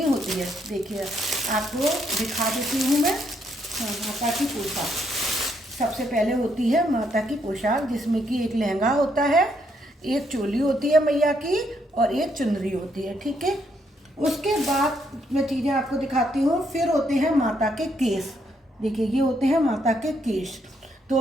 होती है। देखिए आपको दिखा देती हूँ मैं। माता की पोशाक सबसे पहले होती है माता की पोशाक, जिसमें कि एक लहंगा होता है, एक चोली होती है मैया की और एक चुनरी होती है। ठीक है, उसके बाद मैं चीज़ें आपको दिखाती हूँ। फिर होते हैं माता के केस। देखिए ये होते हैं माता के केस। तो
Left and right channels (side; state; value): both; normal; correlation 0.74